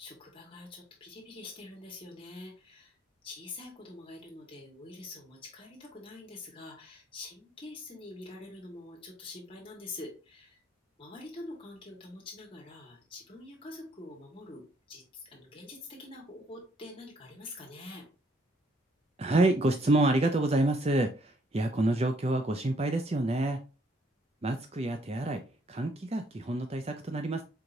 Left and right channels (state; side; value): normal; both; correlation 0.68